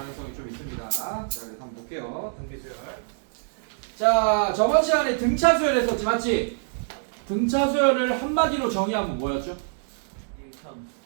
좀 있습니다. 자, 그래서 한번 볼게요. 등비수열. 자, 저번 시간에 등차수열 했었지, 맞지? 등차수열을 한마디로 정의하면 뭐였죠?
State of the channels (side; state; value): left; silent; digital silence